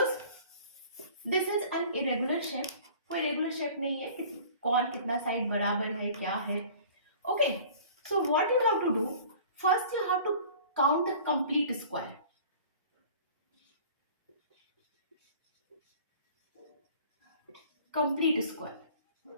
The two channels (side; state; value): both; inverted; correlation -0.46